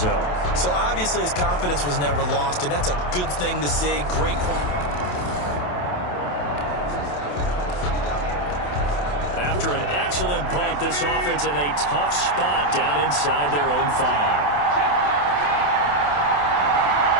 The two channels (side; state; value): right; late; 28 ms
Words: So obviously his confidence was never lost, and that's a good thing to see. Great. After an excellent punt, this offense in a tough spot down inside their own 5.